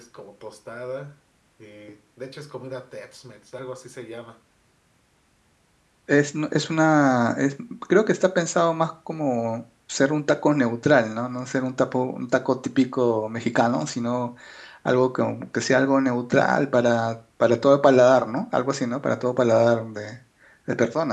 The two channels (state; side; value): identical; both; correlation 1.00